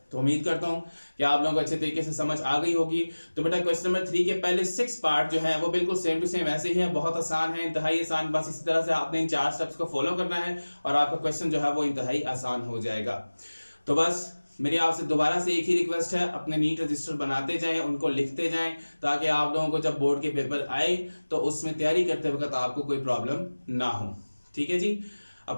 तो उम्मीद करता हूं कि आप लोगों को अच्छे तरीके से समझ आ गई होगी। तो बेटा क्वेश्चन नंबर 3 के पहले 6 पार्ट जो है वो बिल्कुल सेम टू सेम ऐसे ही है, बहुत आसान है, इंतहाई आसान। बस इसी तरह से आपने इन 4 स्टेप्स को फॉलो करना है और आपका क्वेश्चन जो है वो इंतहाई आसान हो जाएगा। तो बस मेरी आपसे दोबारा से एक ही रिक्वेस्ट है, अपने नीट रजिस्टर बनाते जाएं, उनको लिखते जाएं, ताकि आप लोगों को जब बोर्ड के पेपर आए तो उसमें तैयारी करते वक्त आपको कोई प्रॉब्लम ना हो। ठीक है जी,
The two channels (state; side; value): inverted; both; correlation -1.00